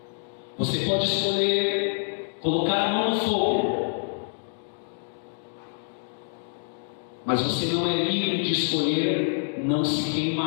Você pode escolher colocar a mão no fogo, mas você não é livre de escolher não se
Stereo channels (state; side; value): silent; right; digital silence